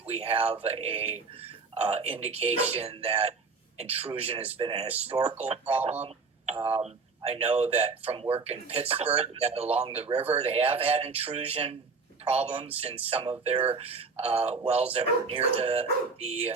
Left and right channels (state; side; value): quieter; left; 4.6 dB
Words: we have a indication that intrusion has been a historical problem. I know that from work in Pittsburgh, that along the river, they have had intrusion problems in some of their wells that were near